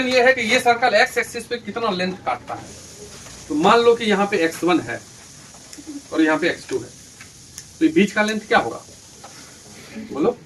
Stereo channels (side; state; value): both; identical; correlation 1.00